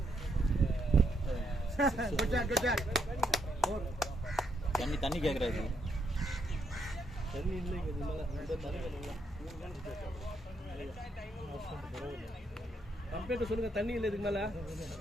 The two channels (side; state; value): both; normal; correlation 0.76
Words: தண்ணி கேட்கறாரு. தண்ணி இல்லைங்க, இது மேலே இந்த தண்ணி வேணுங்களா? கம்பெனிட்ட சொல்லுங்க, தண்ணி இல்லை இதுக்கு மேலே.